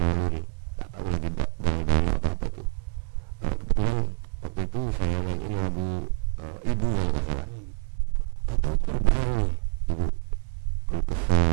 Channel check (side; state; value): left; quieter; 34.2 dB